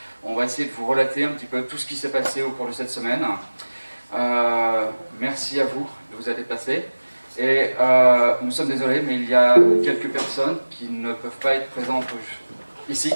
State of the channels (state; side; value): inverted; both; correlation -1.00